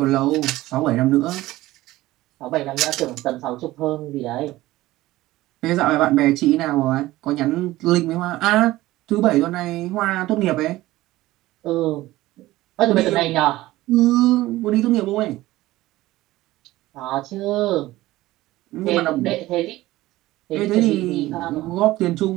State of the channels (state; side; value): quieter; left; 17.1 dB